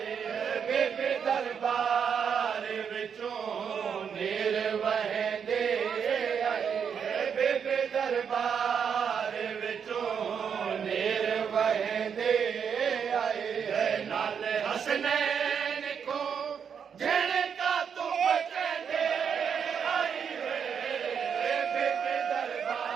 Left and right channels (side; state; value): left; quieter; 7.2 dB